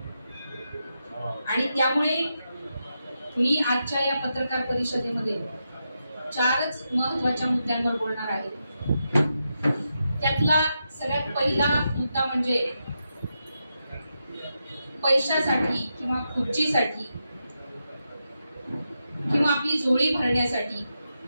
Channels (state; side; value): inverted; both; correlation -0.86